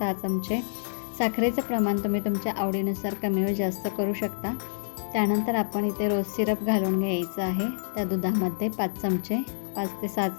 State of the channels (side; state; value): right; silent; digital silence